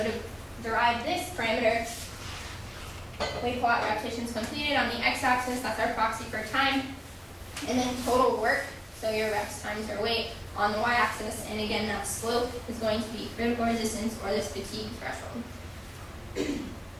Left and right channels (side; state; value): both; identical; correlation 1.00